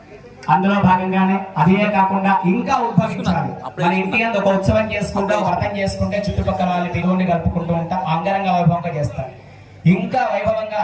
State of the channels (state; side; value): identical; both; correlation 1.00